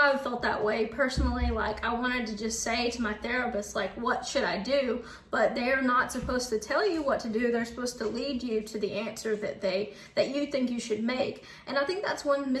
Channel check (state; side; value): identical; both; correlation 1.00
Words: felt that way personally. Like, I wanted to just say to my therapist, like, what should I do? But they're not supposed to tell you what to do. They're supposed to lead you to the answer that you think you should make. And I think that's one